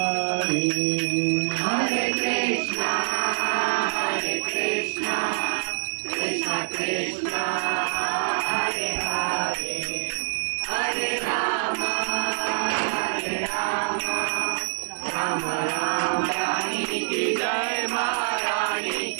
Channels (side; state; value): left; silent; digital silence